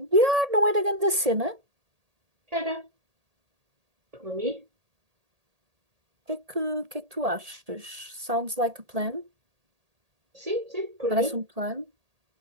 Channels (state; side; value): late; left; 1.8 ms